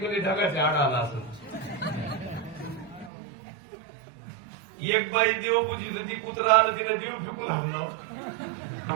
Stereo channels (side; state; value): left; drops out; at 3.1 s